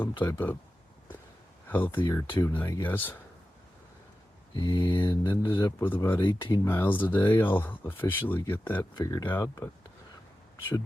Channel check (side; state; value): both; normal; correlation 0.93